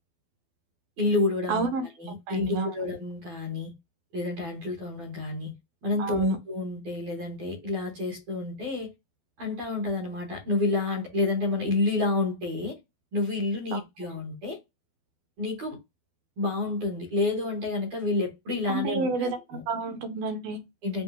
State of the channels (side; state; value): left; late; 12 ms